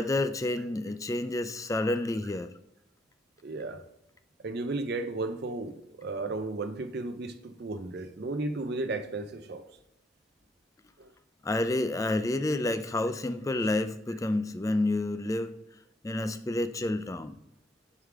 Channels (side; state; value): both; normal; correlation 0.70